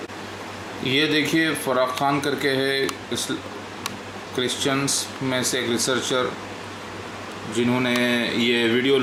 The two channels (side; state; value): both; identical; correlation 1.00